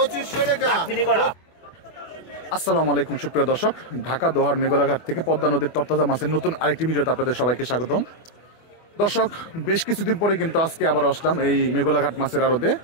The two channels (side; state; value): right; late; 24 ms